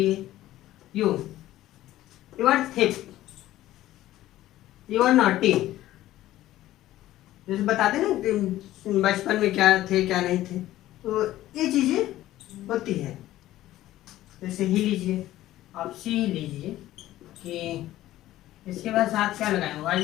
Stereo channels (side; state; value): right; quieter; 14.7 dB